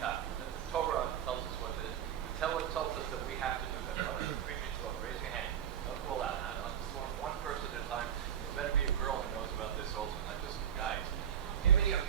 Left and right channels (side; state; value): left; quieter; 9.1 dB